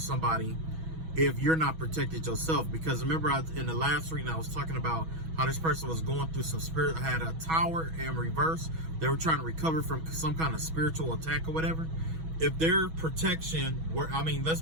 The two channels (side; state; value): left; late; 6.2 ms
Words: if you're not protected yourself? Because remember, in the last reading, I was talking about how this person was going through some had a tower in reverse. They were trying to recover from some kind of spiritual attack or whatever. If their protection were, I mean, let's